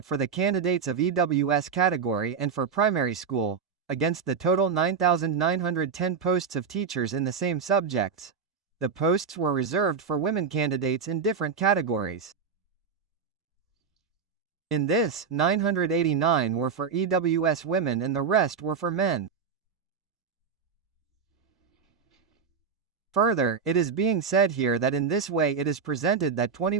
for the candidates of EWS category and for primary school, against the total 9,910 posts of teachers in the same subjects, the posts were reserved for women candidates in different categories. In this, 989 were for EWS women and the rest were for men. Further, it is being said here that in this way it is presented that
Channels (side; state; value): left; quieter; 6.0 dB